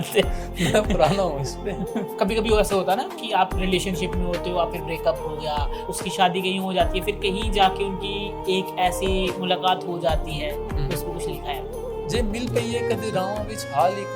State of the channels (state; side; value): identical; both; correlation 1.00